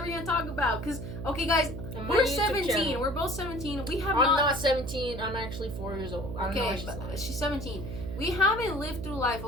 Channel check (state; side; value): noise; right; hum, 8 dB below the sound